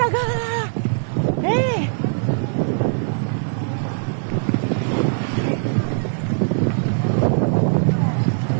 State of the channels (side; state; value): left; silent; digital silence